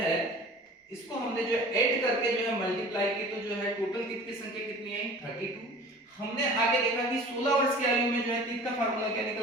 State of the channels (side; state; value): both; normal; correlation 0.44